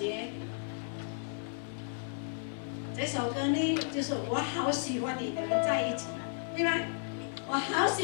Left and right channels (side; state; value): right; silent; digital silence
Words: 这首歌呢，就是我好喜欢你们在一起，对吗？我好